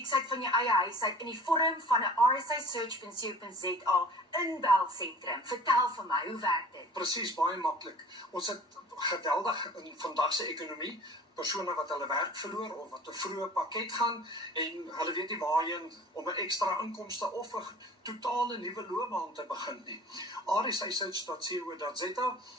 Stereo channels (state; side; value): normal; both; correlation 0.44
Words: van jou eie huis uit in die vorm van 'n rsisearch.co.za inbelsentrum. Vertel vir my, hoe werk dit? Presies, baie maklik. Ons het geweldig in vandag se ekonomie persone wat hulle werk verloor of wat 'n vroeë pakket gaan en hulle weet nie waarheen om 'n ekstra inkomste of 'n totale nuwe loopbaan te begin nie. rsisearch.co.za